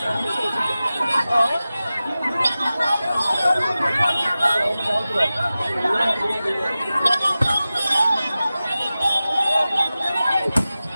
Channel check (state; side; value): inverted; both; correlation -0.95